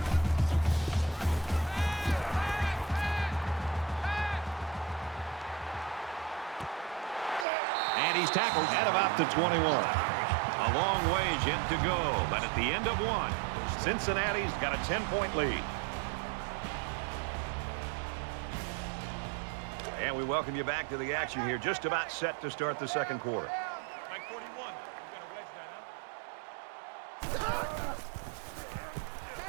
And he's tackled at about the 21. A long ways yet to go, but at the end of one, Cincinnati's got a 10-point lead. And we welcome you back to the action here, just about set to start the second quarter. Like 41. You got a wedge that, huh?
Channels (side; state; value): left; drops out; at 7.5 s